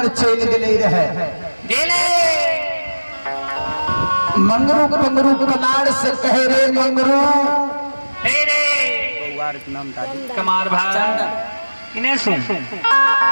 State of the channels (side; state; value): both; inverted; correlation -1.00